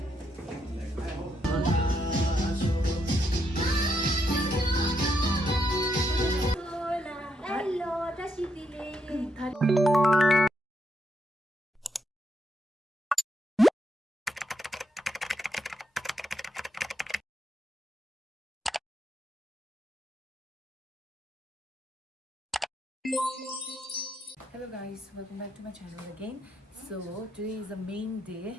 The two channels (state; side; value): normal; both; correlation 0.78